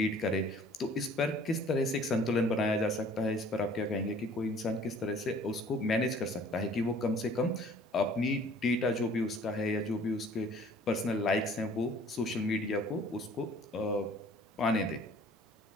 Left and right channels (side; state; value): both; normal; correlation 0.53